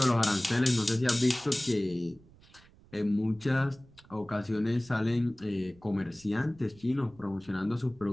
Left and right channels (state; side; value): noise; right; rumble, 26 dB below the sound